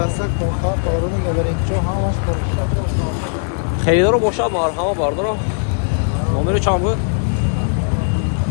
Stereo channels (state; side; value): silent; right; 67 dB below the other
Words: kontak kavrunu gaberin ki çok hamaş kontak. Xeridor boşa marhama barodaro. Nomeri çam bu?